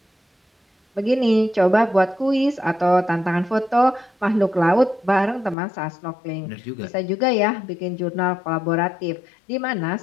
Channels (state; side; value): drops out; right; at 5.6 s